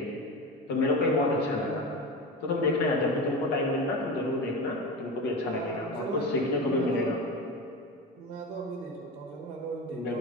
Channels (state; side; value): normal; both; correlation 0.26